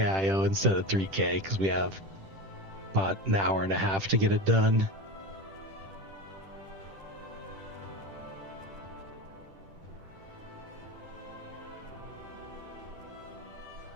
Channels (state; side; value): late; left; 10 ms